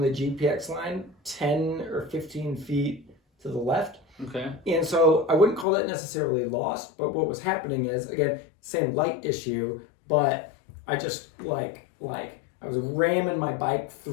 the GPX line 10 or 15 feet to the left. Okay. And so I wouldn't call that necessarily lost, but what was happening is, again, same light issue, but I just I was ramming my bike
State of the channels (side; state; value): right; drops out; at 5.7 s